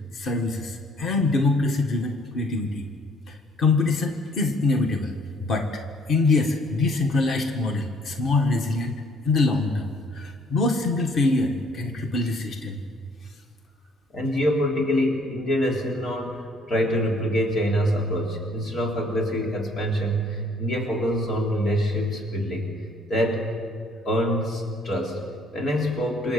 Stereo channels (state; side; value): normal; both; correlation 0.62